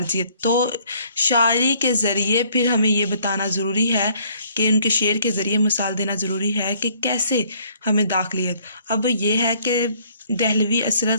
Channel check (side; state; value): both; inverted; correlation -0.62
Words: तो शायरी के ज़रिए फिर हमें ये बताना ज़रूरी है कि उनके शेर के ज़रिए मिसाल देना ज़रूरी है कि कैसे हमें दाखिलियत। अब ये है कि दहलवी